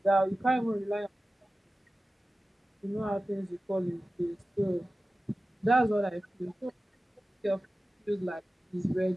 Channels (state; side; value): normal; both; correlation 0.95